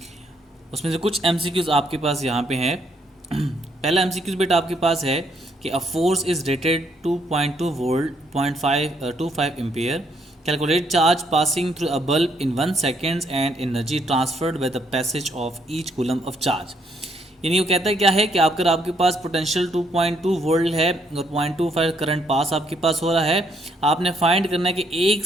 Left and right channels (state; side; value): normal; both; correlation 0.71